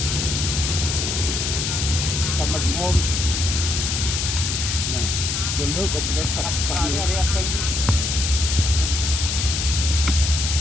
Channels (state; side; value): noise; left; hiss, 1 dB below the sound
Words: តែមកមុំណាលើក៏ផ្លេចកាត់កាត់រៀបចេញ